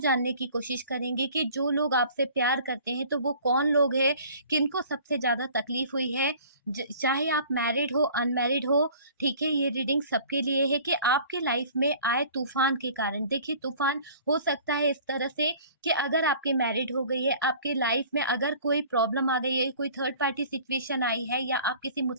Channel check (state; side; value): inverted; both; correlation -0.48